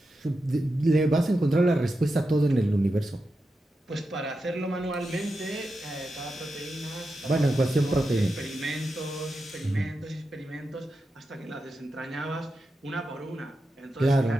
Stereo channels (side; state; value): both; normal; correlation 0.89